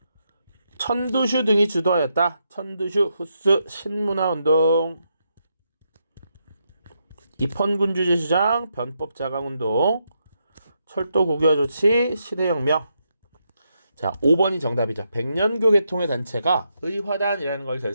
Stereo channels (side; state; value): both; inverted; correlation -0.81